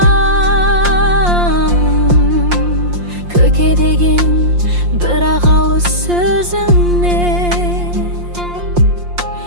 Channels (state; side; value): late; left; 5.7 ms